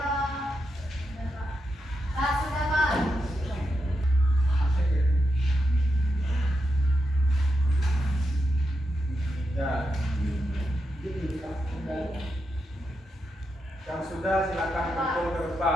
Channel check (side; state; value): both; normal; correlation 0.86